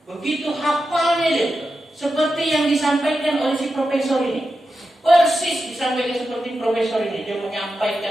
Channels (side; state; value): both; normal; correlation 0.90